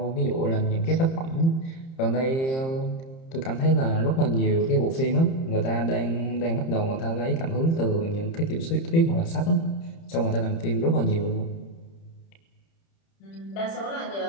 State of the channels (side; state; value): right; late; 30 ms